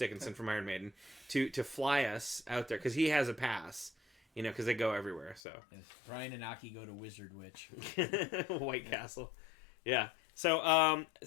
from Iron Maiden, to fly us out there because he has a pass. Because they go everywhere. So Yes. Brian and Aki go to Wizard Witch. White Castle, yeah. So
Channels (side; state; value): right; drops out; at 5.4 s